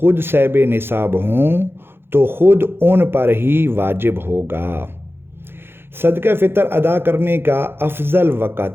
ख़ुद साहिब निसाब हों तो ख़ुद उन पर ही वाजिब होगा। सदका फ़ितर अदा करने का अफजल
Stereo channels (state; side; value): late; left; 0.11 ms